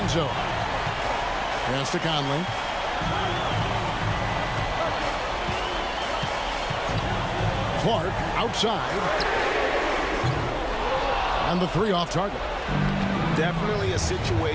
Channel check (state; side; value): identical; both; correlation 1.00